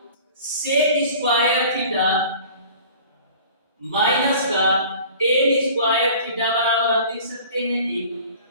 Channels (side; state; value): both; inverted; correlation -0.45